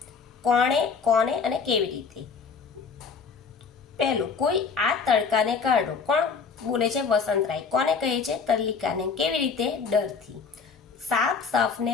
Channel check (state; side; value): quieter; right; 5.5 dB